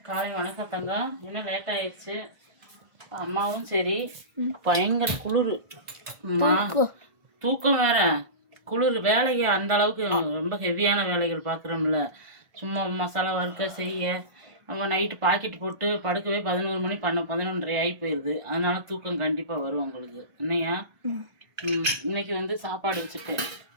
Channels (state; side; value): late; left; 1.5 ms